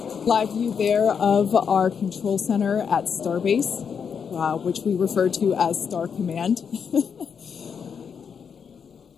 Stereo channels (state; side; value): quieter; right; 6.8 dB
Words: Live view there of our control center at Starbase, which we refer to as Star Command.